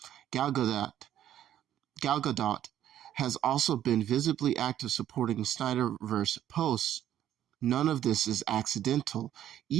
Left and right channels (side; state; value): left; quieter; 11.4 dB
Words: Gal Gadot has also been visibly active supporting Snyderverse posts. None of this is accidental.